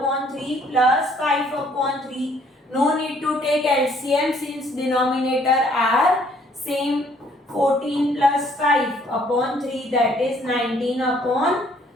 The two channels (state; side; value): normal; both; correlation 0.63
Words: 3 plus 5 upon 3. No need to take LCM since denominator are same. 14 plus 5 upon 3, that is 19 upon